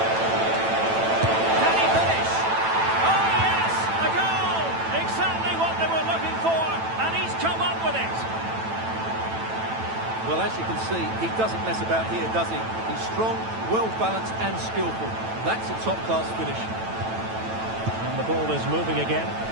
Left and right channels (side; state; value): left; late; 9.0 ms